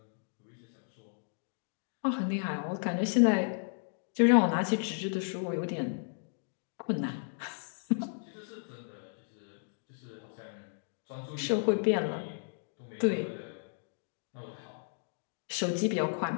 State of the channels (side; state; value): right; silent; digital silence